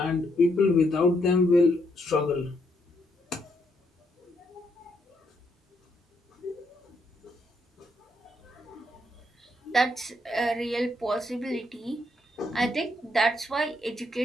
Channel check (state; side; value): normal; both; correlation 0.75